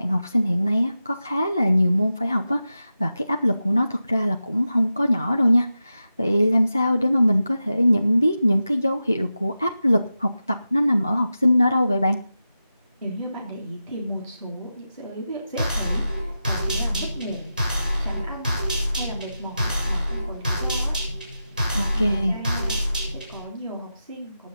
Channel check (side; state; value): both; inverted; correlation -0.92